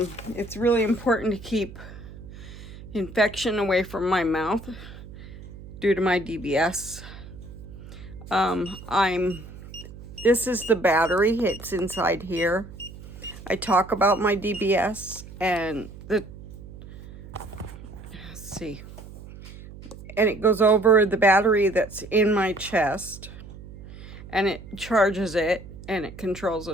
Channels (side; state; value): right; noise; hum, 16 dB below the sound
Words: It's really important to keep infection away from my mouth due to my DBS. This is the battery. It's inside here. I talk about my DBS and let's see. And it goes over the battery that's in my chest, and it charges it, and it controls the